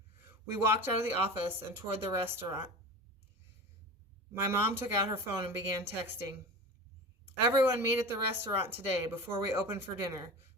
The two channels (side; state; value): both; normal; correlation 0.32